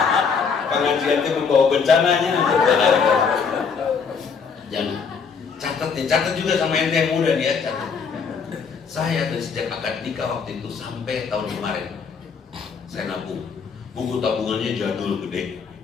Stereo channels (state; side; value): quieter; right; 5.8 dB